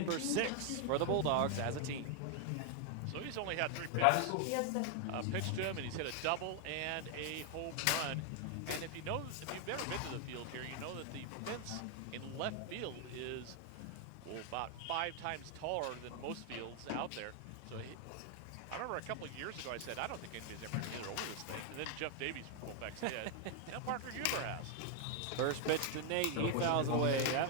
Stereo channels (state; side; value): different; both; correlation 0.00